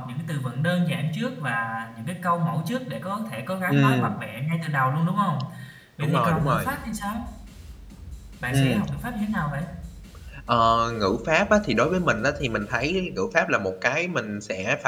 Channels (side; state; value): both; identical; correlation 1.00